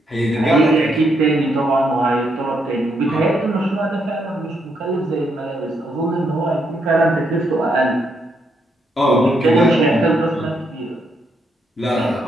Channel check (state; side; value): normal; both; correlation 0.77